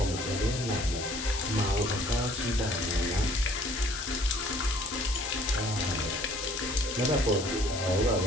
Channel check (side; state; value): left; noise; hiss, 7 dB below the sound